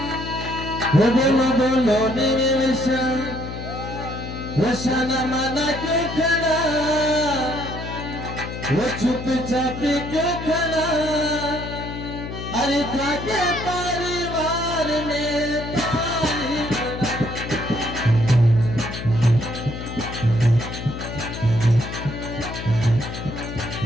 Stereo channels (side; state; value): left; noise; hum, 8 dB below the sound